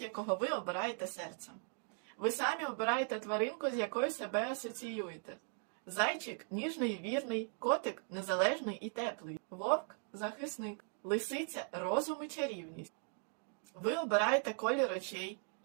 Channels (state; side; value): silent; left; 52 dB below the other